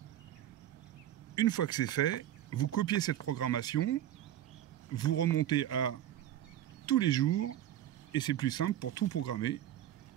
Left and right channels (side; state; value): left; quieter; 11.9 dB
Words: Une fois que c'est fait, vous copiez cette programmation, vous remontez à tous les jours, et c'est plus simple pour tout programmer